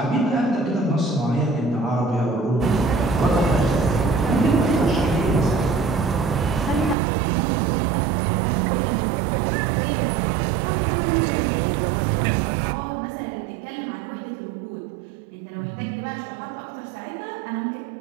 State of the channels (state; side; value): drops out; left; at 7.0 s